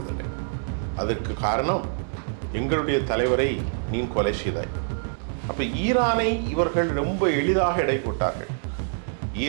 அதற்கு காரணம் எங்களுடைய தலைவரை நீ கொலை செய்தாய். அப்போ ஈரானை இவர்கள் ரொம்ப எளிதாக எடை போட்டார்கள்.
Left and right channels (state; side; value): silent; left; 61 dB below the other